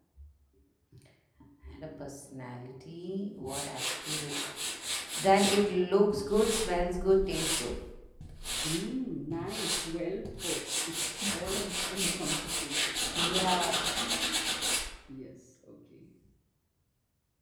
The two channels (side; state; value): both; identical; correlation 1.00